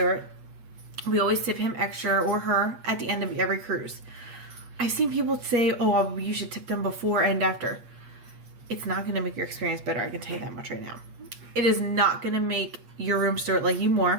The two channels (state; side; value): late; left; 8.4 ms